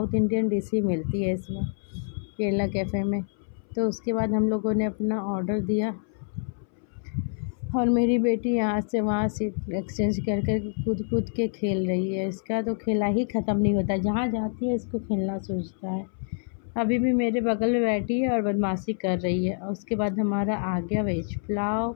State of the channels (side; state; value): right; silent; 60 dB below the other